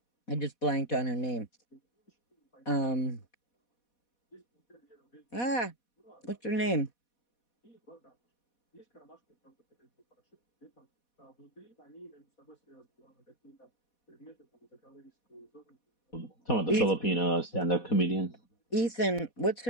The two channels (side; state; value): right; late; 4.1 ms